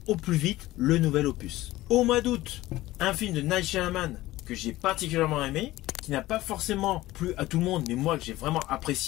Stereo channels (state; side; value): quieter; right; 17.0 dB